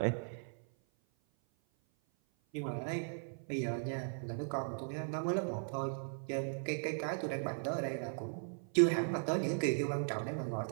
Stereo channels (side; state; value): left; silent; 53 dB below the other